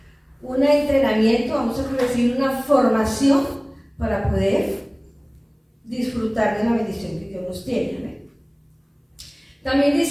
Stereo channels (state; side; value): identical; both; correlation 1.00